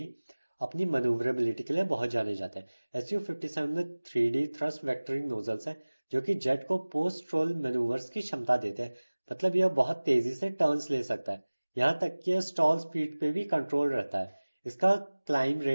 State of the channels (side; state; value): both; inverted; correlation -1.00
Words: अपनी मनूवरेबिलिटी के लिए बहुत जाने जाते हैं। Su-57 में 3D थ्रस्ट वेक्टरिंग नोजल्स हैं जो कि जेट को पोस्ट रोल मैनूवर्स की क्षमता देते हैं। मतलब यह बहुत तेजी से टर्न्स ले सकता है, यहाँ तक कि स्टॉल स्पीड पे भी कंट्रोल रहता है। इसका क्लाइम